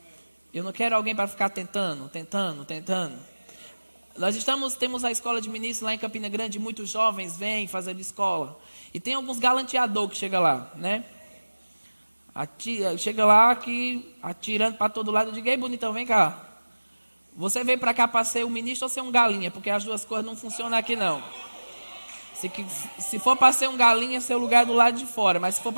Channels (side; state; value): both; inverted; correlation -1.00